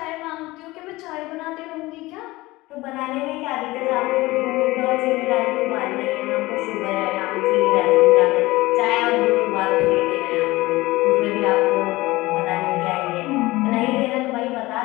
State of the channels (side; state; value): right; quieter; 20.0 dB